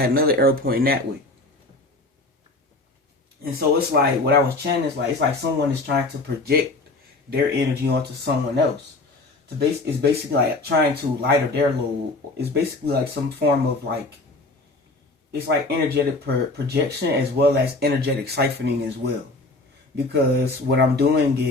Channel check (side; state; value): right; quieter; 3.1 dB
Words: another arrow pointing that way. And so it's like, what I was chanting is like, it's like someone is trying to project their energy onto someone else. It's basically like trying to lighter their load. It's basically like some form of like, it's like energetic projection as well as energetic siphoning as well. Because what I'm doing